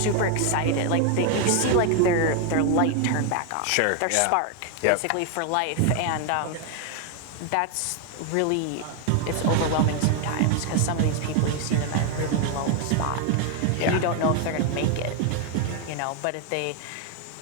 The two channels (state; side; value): different; both; correlation 0.01